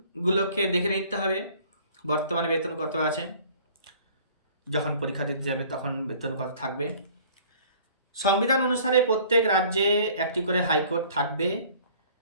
দেখে নিতে হবে বর্তমানে বেতন কত আছে, যখন পরীক্ষা দিতে যাবে তখন বেতন কত থাকবে। সংবিধান অনুসারে প্রত্যেক রাজ্যে একটি করে হাইকোর্ট থাকবে,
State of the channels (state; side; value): inverted; both; correlation -0.52